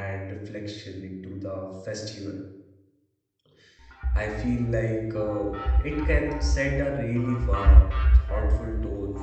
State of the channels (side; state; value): both; identical; correlation 1.00